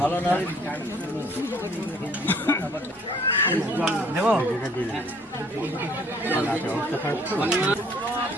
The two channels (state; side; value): normal; both; correlation 0.59